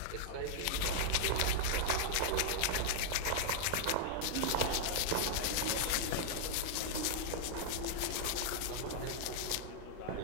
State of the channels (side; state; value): both; different; correlation -0.01